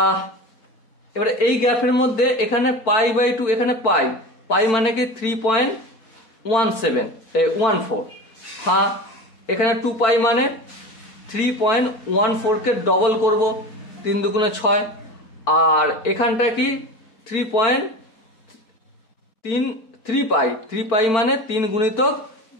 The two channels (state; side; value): late; right; 4.5 ms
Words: এবারে এই গ্রাফের মধ্যে এখানে পাই বাই 2, এখানে পাই, পাই মানে কি 3.14, হ্যাঁ, এখানে 2 পাই মানে 3.14 কে ডবল করব, 3 দুগুণে 6, আর এখানটা কি 3 পাই, 3 পাই মানে 3 গুণিতক